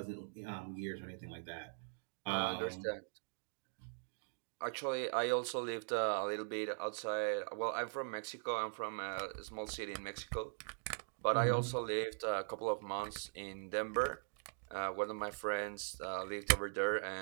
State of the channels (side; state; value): left; silent; digital silence